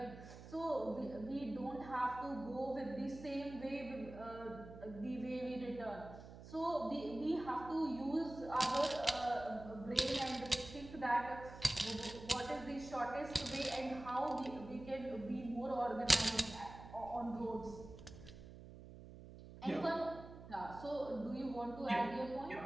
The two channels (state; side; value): noise; right; hum, 14 dB below the sound